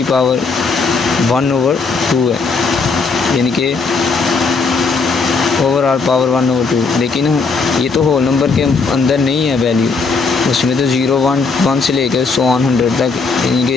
पावर 1/2 है, यानी कि ओवरऑल पावर 1/2, लेकिन ये तो होल नंबर के अंदर नहीं है वैल्यू, उसमें तो 0, 1, 1 से लेकर 100 तक यानी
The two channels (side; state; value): right; quieter; 4.5 dB